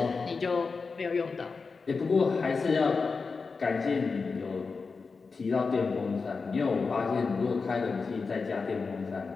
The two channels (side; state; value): right; quieter; 4.6 dB